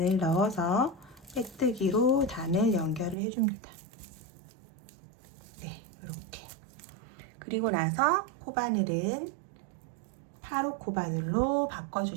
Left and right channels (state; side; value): drops out; left; at 3.2 s